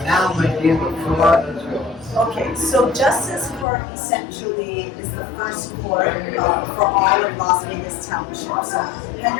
now, my dear, the floor is yours. Okay, so Justice Court essentially is the first court for all of Las Vegas Township. So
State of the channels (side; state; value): right; drops out; at 3.7 s